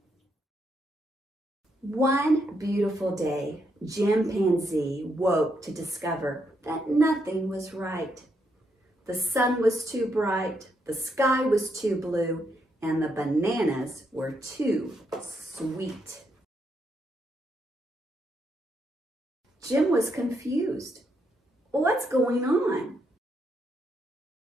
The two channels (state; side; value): normal; both; correlation 0.78